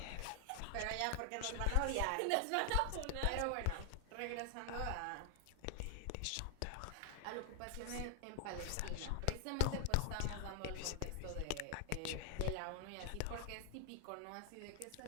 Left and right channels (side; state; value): both; different; correlation 0.00